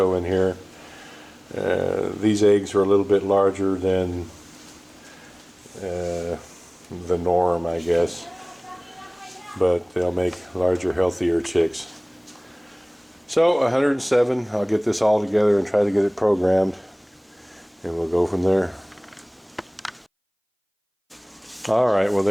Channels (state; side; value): identical; both; correlation 1.00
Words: in here. These eggs are a little bit larger than the norm, I guess, but they'll make larger, healthier chicks. So 107, I'll get this all together and try to get it programmed, and we'll go from there. Alright, well